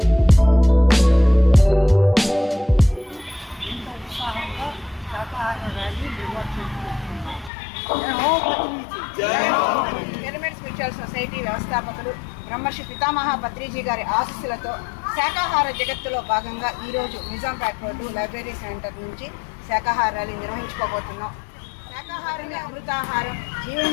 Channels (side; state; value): right; drops out; at 7.5 s